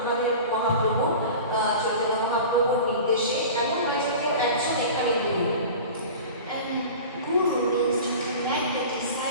মহাপ্রভু চৈতন্য মহাপ্রভুর নির্দেশে এমন নয় যে কেউ একজন এখানে গুরু। And guru means to connect the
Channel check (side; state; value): both; inverted; correlation -0.36